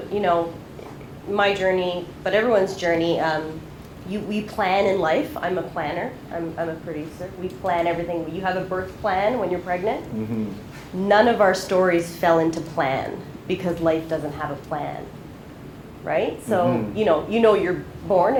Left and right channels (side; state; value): both; identical; correlation 1.00